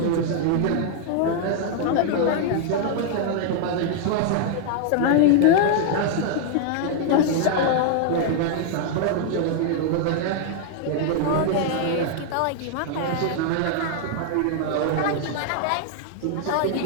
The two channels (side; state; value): both; different; correlation 0.00